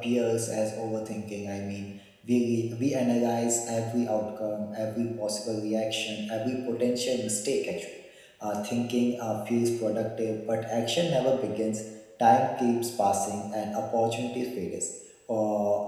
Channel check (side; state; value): both; identical; correlation 1.00